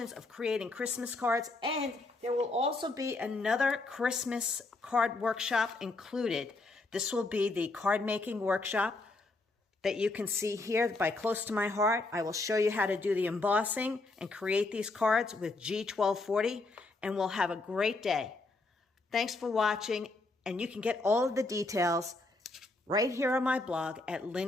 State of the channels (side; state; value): right; quieter; 3.2 dB